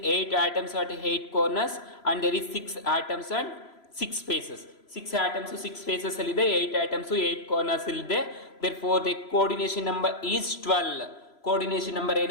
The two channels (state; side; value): late; right; 3.0 ms